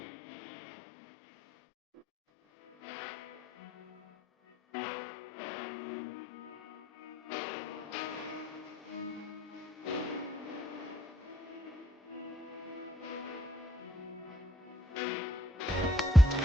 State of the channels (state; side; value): normal; both; correlation 0.72